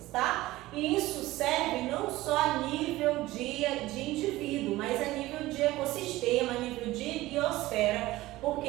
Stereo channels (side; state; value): left; quieter; 17.7 dB